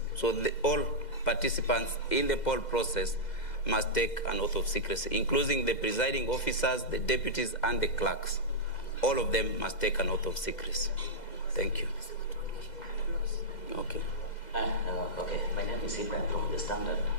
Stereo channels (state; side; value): late; right; 2.0 ms